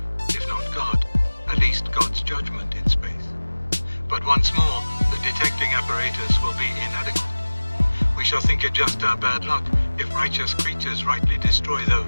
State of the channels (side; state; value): both; inverted; correlation -1.00